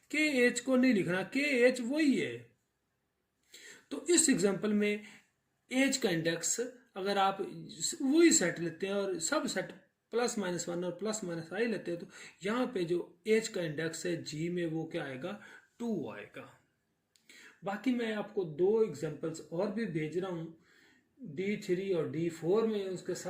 के एच को नहीं लिखना, के एच वही है। तो इस एग्जांपल में एज का इंडेक्स अगर आप वही सेट लेते हैं और सब सेट प्लस माइनस वन और प्लस माइनस आई लेते हैं, तो यहाँ पे जो एज का इंडेक्स है जी में वो क्या आएगा, 2 आएगा। बाकी मैं आपको 2 एग्जांपल्स और भी भेज रहा हूँ, D3 और D4 में उसके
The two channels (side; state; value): both; identical; correlation 1.00